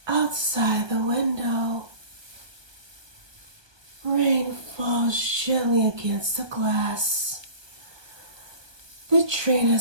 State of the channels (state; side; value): late; left; 1.2 ms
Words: Outside the window, rain falls gently against the glass. The train